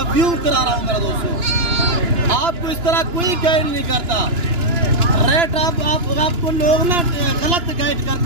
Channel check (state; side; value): late; left; 2.9 ms